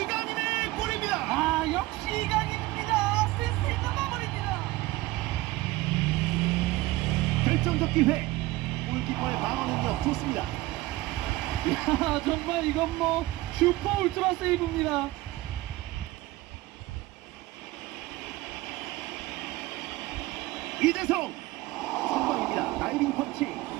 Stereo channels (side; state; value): left; quieter; 18.7 dB